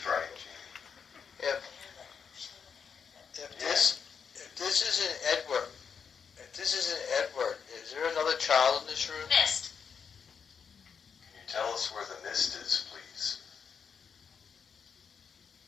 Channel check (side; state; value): right; quieter; 6.5 dB